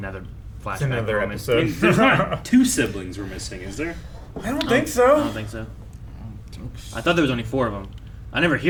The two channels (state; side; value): identical; both; correlation 1.00